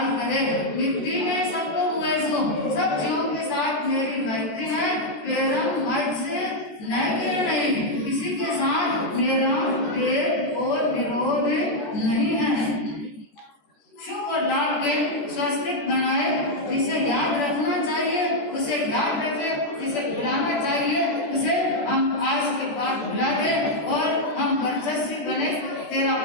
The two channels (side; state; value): right; late; 14 ms